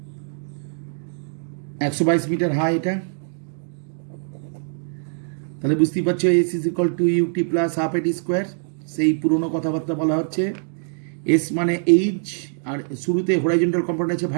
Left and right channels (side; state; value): left; silent; digital silence